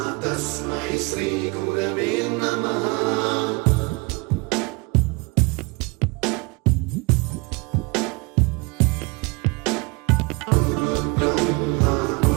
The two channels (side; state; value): left; quieter; 27.8 dB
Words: तस्मै श्री गुरवे नमः।